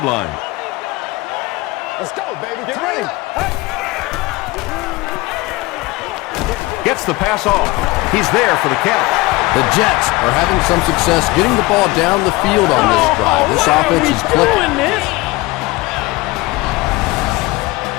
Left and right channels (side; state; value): right; quieter; 21.1 dB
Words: line. Let's go, baby. Get ready. Gets the pass off. He's there for the catch. The Jets are having some success getting the ball down the field on this drive. This offense is clicking.